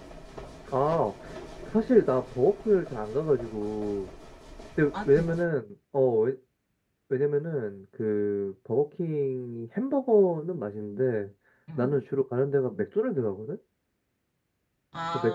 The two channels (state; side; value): identical; both; correlation 1.00